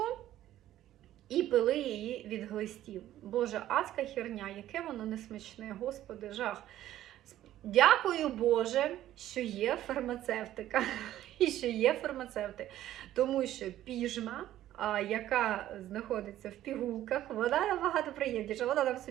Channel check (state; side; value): quieter; left; 13.2 dB